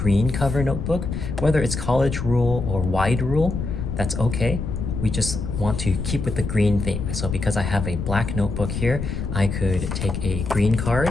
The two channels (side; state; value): left; noise; rumble, 4 dB below the sound